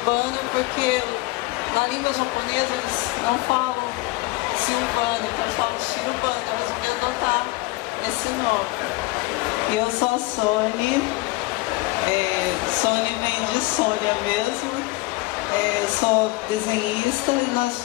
porque na língua japonesa eles não falam Silvana, então eles falam Shirubana, então eu resolvi adotar esse nome. E eu sou a Sônia. Sônia vem de Sônia mesmo. Sou desenhista e nós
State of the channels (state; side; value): quieter; right; 21.7 dB